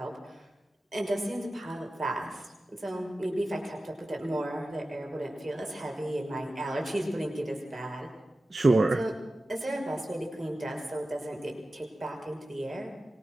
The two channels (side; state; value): both; normal; correlation 0.95